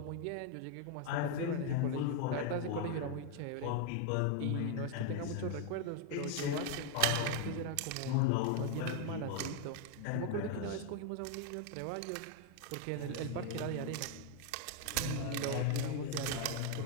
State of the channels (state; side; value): different; both; correlation 0.00